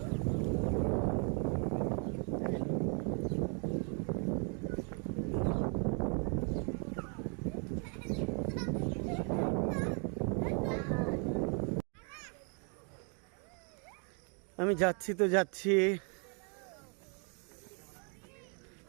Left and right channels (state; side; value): quieter; left; 38.5 dB